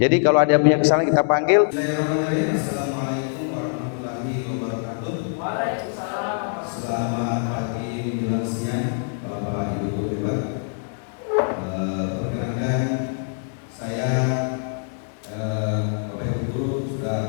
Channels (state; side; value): silent; right; 60 dB below the other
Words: Jadi kalau ada punya kesalahan kita panggil. Assalamualaikum warahmatullahi wabarakatuh.